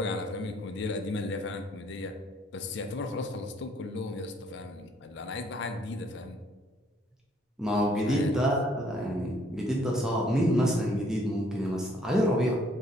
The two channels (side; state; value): both; normal; correlation 0.64